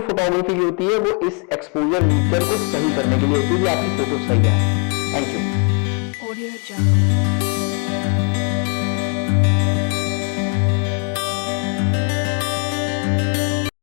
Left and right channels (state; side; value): quieter; right; 38.7 dB